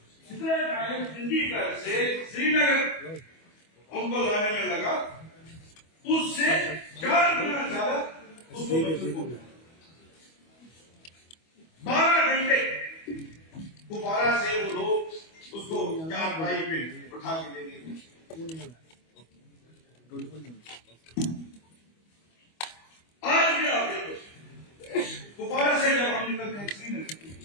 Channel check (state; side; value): late; right; 25 ms